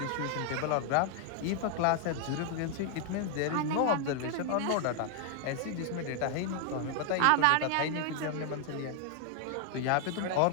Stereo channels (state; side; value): different; both; correlation 0.00